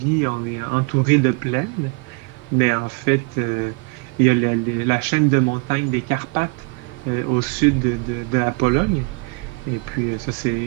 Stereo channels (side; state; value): left; quieter; 31.9 dB